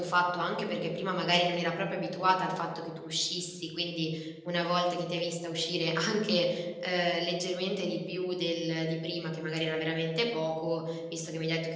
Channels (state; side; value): identical; both; correlation 1.00